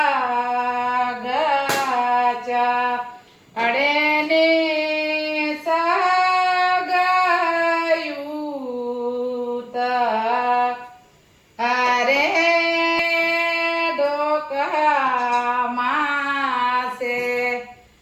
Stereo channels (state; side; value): identical; both; correlation 1.00